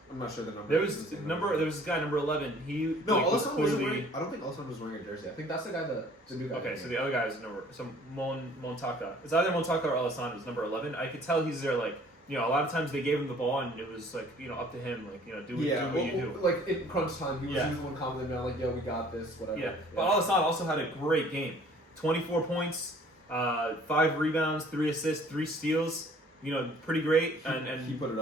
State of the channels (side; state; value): both; normal; correlation 0.54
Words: I'm not sure the number. There was this guy number 11. He Alassane wasn't wearing. I don't think Alassane was wearing a jersey. I think that's the guy the new guy. Okay, so the other guy is Montaka. It's either Montaka or Alassane is number 11. I could tell he's there like. A lot of times they gave him the ball and it was like, up to him, like, do what you do. Like in crunch time, he was the one commenting on like, yo, we got this, whatever. Yeah, but Alassane also had a great game. 24 points, 5 rebounds, 3 assists, 3 steals. Pretty great. And he put it